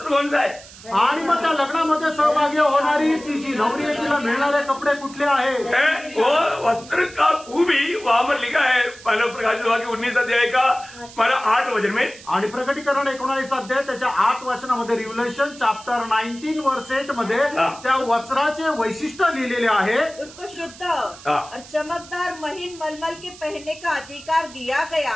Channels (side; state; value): right; noise; hiss, 19 dB below the sound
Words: कौन सा है? आणि मग त्या लग्नामध्ये सहभागी होणारी ती जी नवरी आहे तिला मिळणारे कपडे कुठले आहेत? वो वस्त्र का खूबी वहां पर लिखा है मानव प्रकाशित वाक्य 19 अध्याय का 8 वचन में। आणि प्रकटीकरण 19 अध्याय त्याच्या 8 वचनामध्ये रिव्हलेशन चॅप्टर 19 वर्स 8 मध्ये त्या वस्त्राचे वैशिष्ट्य लिहिलेले आहे। उसको शुद्ध और चमकदार महीन मलमल के पहनने का अधिकार दिया